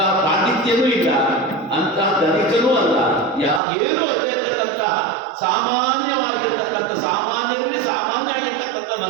ಪಾಂಡಿತ್ಯನೂ ಇಲ್ಲ, ಅಂತ ಧನಿಕನೂ ಅಲ್ಲ, ಏನು ಅಲ್ಲೇ ಇರ್ತಕ್ಕಂಥ ಸಾಮಾನ್ಯವಾಗಿರ್ತಕ್ಕಂಥ ಸಾಮಾನ್ಯರಲ್ಲಿ ಸಾಮಾನ್ಯ ಆಗಿರ್ತಕ್ಕಂಥ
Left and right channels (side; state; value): left; drops out; at 3.6 s